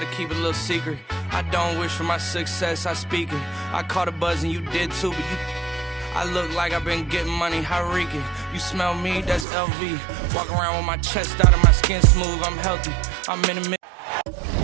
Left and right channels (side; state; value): left; drops out; at 9.5 s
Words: keep a little secret. I don't wish for my success, I speak it. I caught a buzz and you did too, but I look like I've been getting money, Hariki. You smell me, that's LV. Walk around with my chest out and my skin smooth, I'm healthy. I'm in a